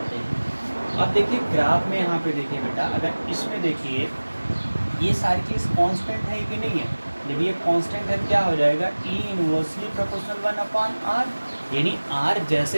हैं। अब देखिए ग्राफ में यहाँ पे देखिए बेटा, अगर इसमें देखिए ये सारी चीज़ कांस्टेंट है कि नहीं है, जब ये कांस्टेंट है क्या हो जाएगा, ई इनवर्सली प्रोपोर्शनल 1 अपॉन आर, यानी आर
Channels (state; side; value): inverted; both; correlation -1.00